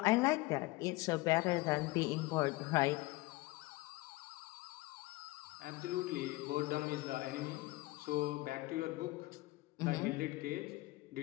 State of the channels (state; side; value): quieter; right; 20.9 dB